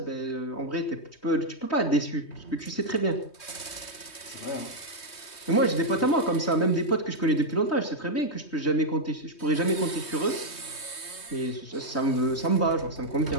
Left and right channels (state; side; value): late; right; 3.2 ms